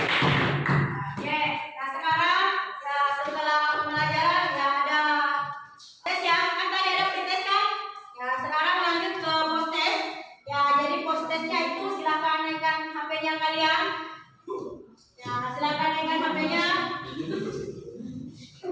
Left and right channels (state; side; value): identical; both; correlation 1.00